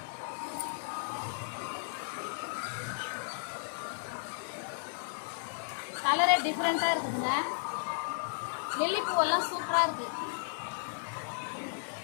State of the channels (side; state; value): right; silent; digital silence